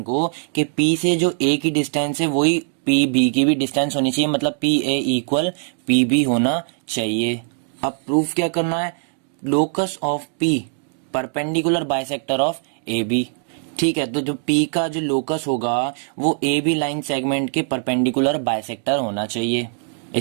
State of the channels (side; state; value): left; silent; digital silence